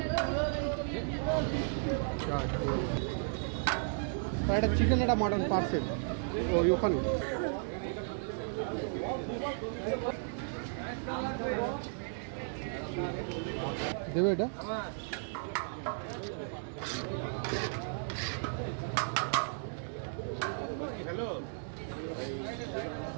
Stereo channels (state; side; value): silent; left; digital silence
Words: একটা চিকেন একটা মাটন পার্সেল ওই ওখানে দেবে এটা। হ্যালো